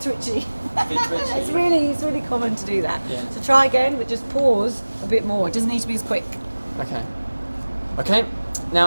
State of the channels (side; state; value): both; inverted; correlation -1.00